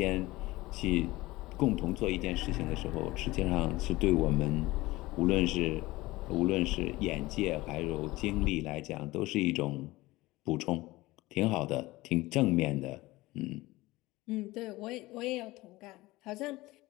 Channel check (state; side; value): quieter; right; 19.6 dB